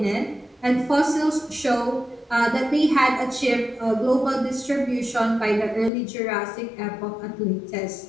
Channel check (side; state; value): right; drops out; at 5.9 s